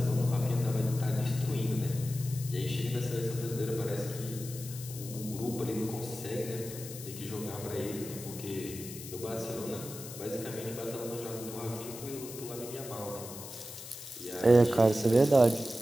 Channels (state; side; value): noise; left; hiss, 12 dB below the sound